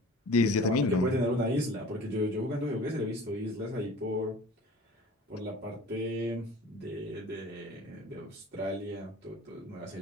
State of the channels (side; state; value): both; normal; correlation 0.43